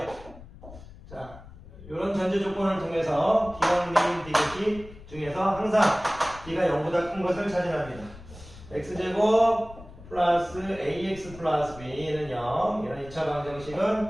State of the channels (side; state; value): left; noise; rumble, 18 dB below the sound